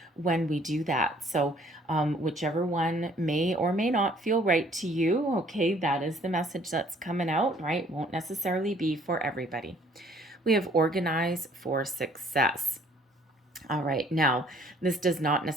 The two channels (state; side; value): normal; both; correlation 0.59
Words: when we do that. So whichever one may or may not feel right to you, okay, that is the message that's coming out, right? Won't necessarily be for everybody. We have organize for success. All right, now, this does not